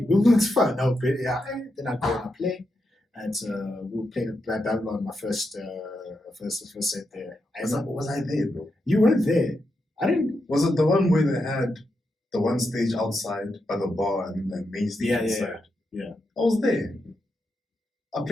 It's fun. No, but yeah. Then I go and I play. And we played at Babylon, my first set there. Was I there, bro? You weren't there. I didn't. Was it the one where they had the one stage outside by the bar and the main stage inside? Yeah. I was there. I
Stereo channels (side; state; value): both; normal; correlation 0.85